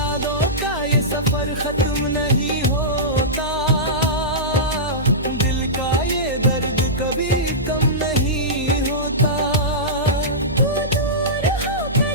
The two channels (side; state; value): right; noise; hum, 10 dB below the sound